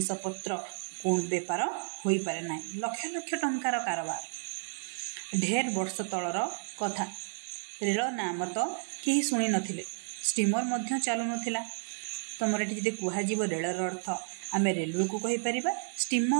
पत्र कौन बेपार होई पारे ना। लक्ष लक्ष टंकार कारोबार। ढेर वर्ष तलर कथा। रेल नाम तो कहीं शुणी नथिले। स्टीमर मध्य चालू नथिला। तुमर ये जब कहुव रेलर अर्थ आम रेलवे को कहीपर।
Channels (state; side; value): silent; left; digital silence